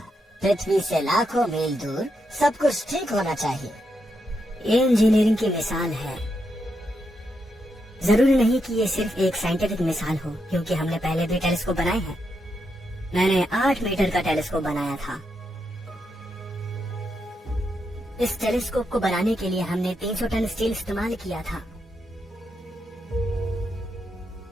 पृथ्वी से लाखों मील दूर सब कुछ ठीक होना चाहिए। ये इंजीनियरिंग की मिसाल है। जरूरी नहीं कि ये सिर्फ एक साइंटिफिक मिसाल हो, क्योंकि हमने पहले भी टेलीस्कोप बनाए हैं। मैंने 8 मीटर का टेलीस्कोप बनाया था। इस टेलीस्कोप को बनाने के लिए हमने 300 टन स्टील इस्तेमाल किया था,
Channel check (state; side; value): normal; both; correlation 0.82